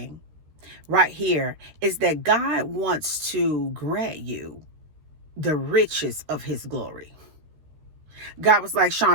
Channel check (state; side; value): late; left; 13 ms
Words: right here is that God wants to grant you the riches of his glory. God was like,